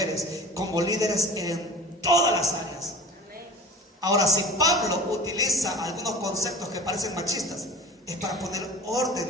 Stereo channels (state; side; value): normal; both; correlation 0.39